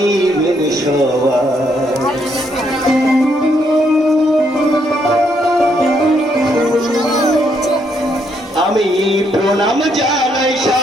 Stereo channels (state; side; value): normal; both; correlation 0.74